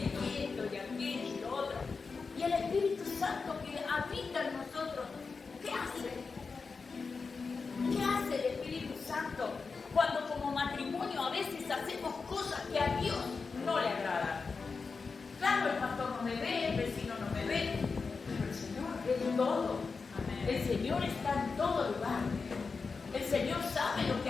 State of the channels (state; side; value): quieter; right; 4.7 dB